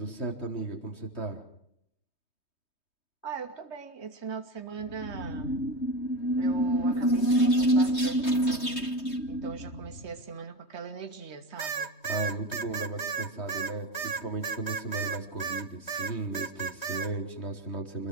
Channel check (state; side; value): late; right; 3.2 ms